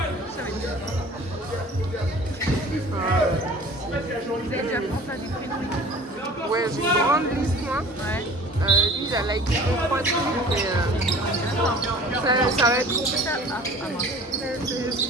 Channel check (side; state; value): both; normal; correlation 0.45